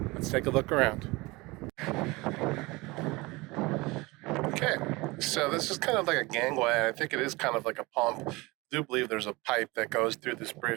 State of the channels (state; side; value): quieter; left; 23.0 dB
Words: let's take a look around. Okay, so this is kind of like a gangway. I think it is kind of like a pump. I do believe there's a pipe that goes through this